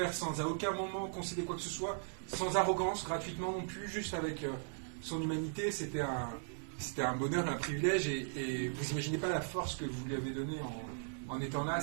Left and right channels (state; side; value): silent; left; digital silence